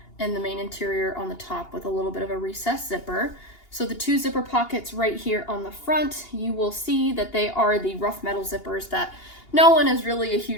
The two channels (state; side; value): late; right; 2.8 ms